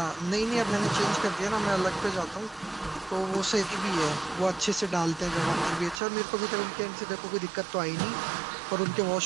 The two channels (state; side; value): drops out; left; at 6.0 s